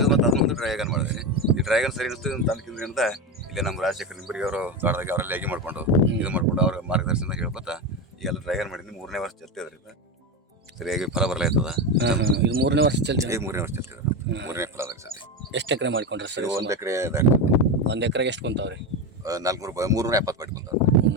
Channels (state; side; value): normal; both; correlation 0.17